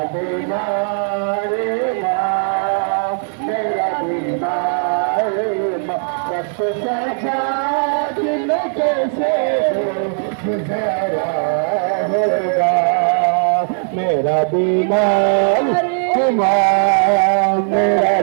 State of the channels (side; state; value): left; silent; 68 dB below the other